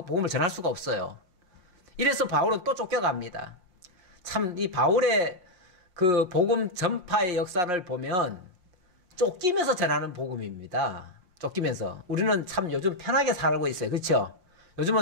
전할 수가 없어요. 이래서 바울은 또 쫓겨갑니다. 참 이 바울의 그 복음 전파의 역사를 보면 쫓기면서 전하는 복음입니다. 쫓기면서. 우리는 참 요즘 편하게 살고 있어요. 그렇죠?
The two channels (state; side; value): late; left; 5.6 ms